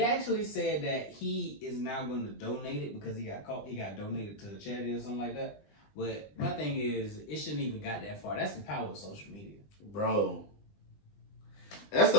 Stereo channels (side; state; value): right; late; 20 ms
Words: actually said that he is now going to donate it because he got caught. He got donated to a charity or something like that. But my thing is, it shouldn't even got that far. That's the power of social media, bro.